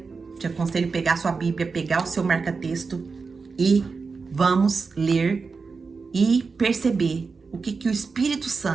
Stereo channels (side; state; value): left; quieter; 4.7 dB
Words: te aconselho a pegar sua Bíblia, pegar o seu marca-texto e vamos ler e perceber o que o Espírito